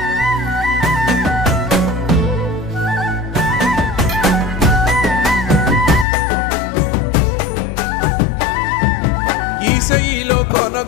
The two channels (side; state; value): right; drops out; at 6.1 s